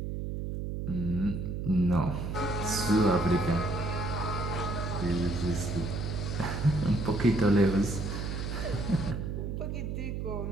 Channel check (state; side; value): noise; right; hum, 4 dB below the sound